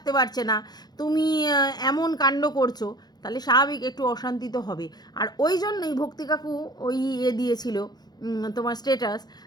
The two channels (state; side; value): late; right; 0.19 ms